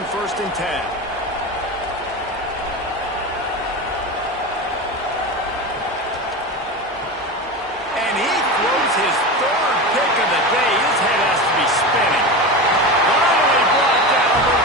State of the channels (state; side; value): normal; both; correlation 0.24